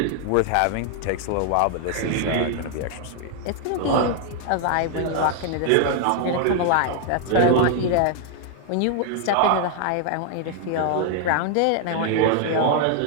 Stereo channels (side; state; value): both; different; correlation 0.00